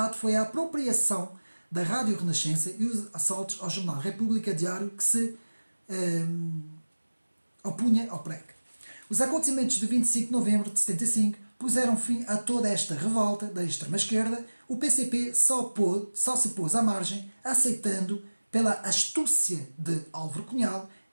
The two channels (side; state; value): both; inverted; correlation -1.00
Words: foi a apropriação da Rádio Renascença e os assaltos ao jornal República Diário, que se opunha ao PREC. Os acontecimentos de 25 de novembro de 75 puseram fim a toda esta revolta da extrema-esquerda. O PCP só se pôs à margem, aceitando pela astúcia de Álvaro Cunhal